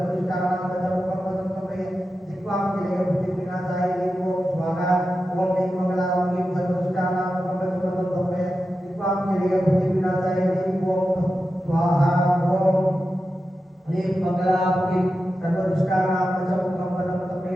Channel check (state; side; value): normal; both; correlation 0.91